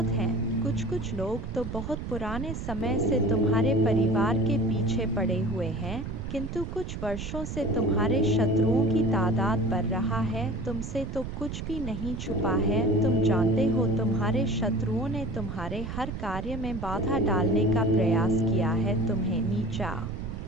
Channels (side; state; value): right; noise; rumble, 6 dB below the sound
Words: हैं। कुछ लोग तो बहुत पुराने समय से तुम्हारे परिवार के पीछे पड़े हुए हैं, किंतु कुछ वर्षों से तुम्हारे शत्रुओं की तादाद बढ़ रहा है। तुमसे तो कुछ भी नहीं छुपा है, तुम जानते हो तुम्हारे शत्रुओं ने तुम्हारे हर कार्य में बाधा डालने का प्रयास किया है, तुम्हें नीचा